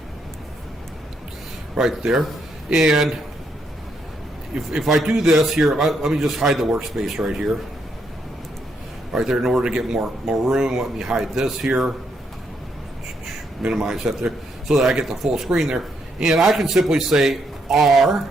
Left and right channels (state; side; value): normal; both; correlation 0.76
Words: right there. And if I do this here, let me just hide the workspace right here right there. In order to get more room, let me hide this here, minimize that there, so that I get the full screen there. And I can simply say